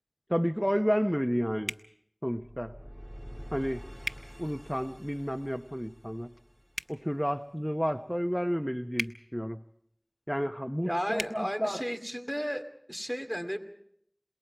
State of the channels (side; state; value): both; identical; correlation 1.00